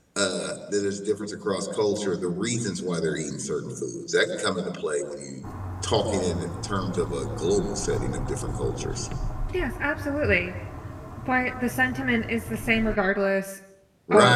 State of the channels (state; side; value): identical; both; correlation 1.00